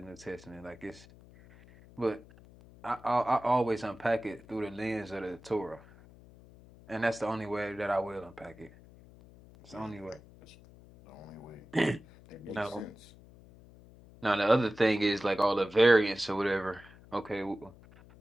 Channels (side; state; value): left; noise; hum, 22 dB below the sound